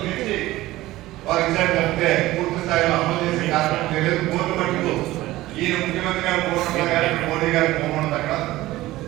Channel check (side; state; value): left; quieter; 17.1 dB